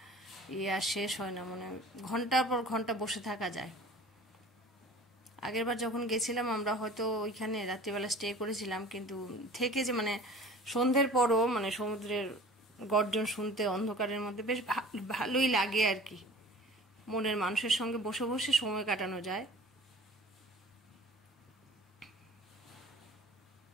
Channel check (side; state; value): both; normal; correlation 0.43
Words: আর শেষ হয় না, মানে ঘন্টার পর ঘন্টা বসে থাকা যায়। আগেরবার যখন গেছিলাম আমরা হয়তো ওইখানে রাত্রিবেলা স্টে করেছিলাম, কিন্তু থেকে যে মানে সন্ধ্যের পরও মানে সমুদ্রের গর্জন শুনতে অন্ধকারের মধ্যে বেশ ভালোই লাগে আর কি, মনের মানুষের সঙ্গে বসে বসে সময় কাটানো যায়।